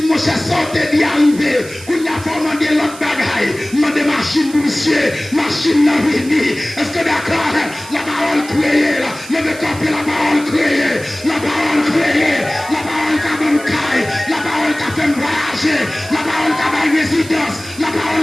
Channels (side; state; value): right; noise; hiss, 16 dB below the sound